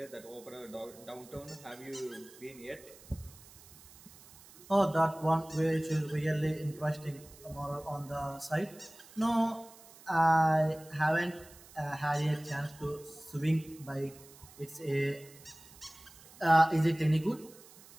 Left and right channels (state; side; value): noise; right; hiss, 22 dB below the sound